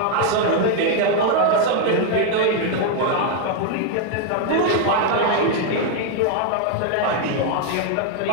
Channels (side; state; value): both; different; correlation 0.00